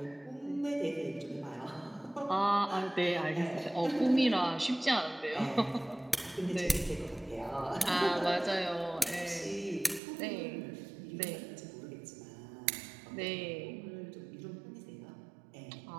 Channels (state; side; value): drops out; left; at 10.0 s